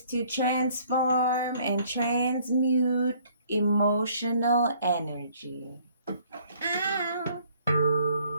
to transform and transmute emotional energy. Ow.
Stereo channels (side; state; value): both; inverted; correlation -0.60